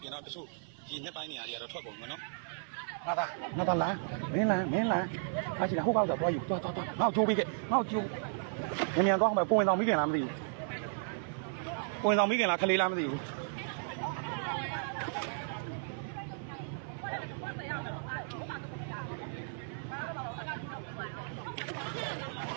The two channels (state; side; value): silent; left; 55 dB below the other